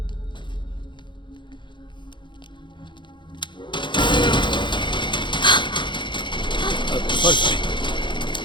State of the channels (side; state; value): right; late; 0.23 ms